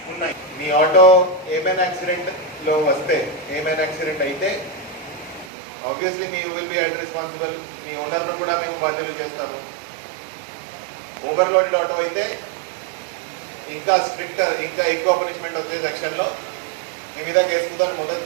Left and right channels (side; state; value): left; drops out; at 5.5 s